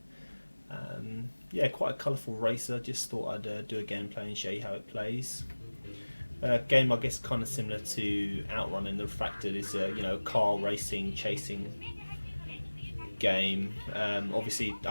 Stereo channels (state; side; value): inverted; both; correlation -1.00